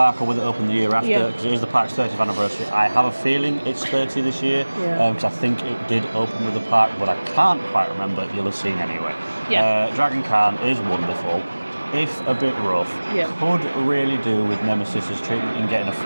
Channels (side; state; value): both; inverted; correlation -1.00